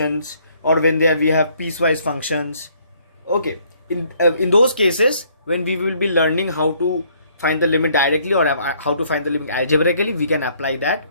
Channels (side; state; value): both; inverted; correlation -0.64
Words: or when we have piecewise functions. Okay, in those cases when we will be learning how to find the limit directly or how to find the limit algebraically, we can apply that.